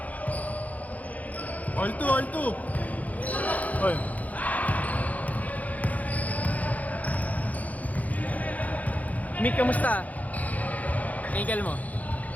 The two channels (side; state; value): right; late; 0.076 ms